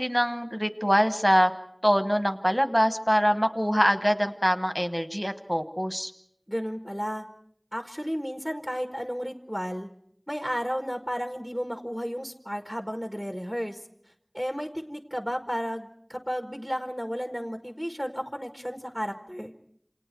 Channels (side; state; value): both; identical; correlation 1.00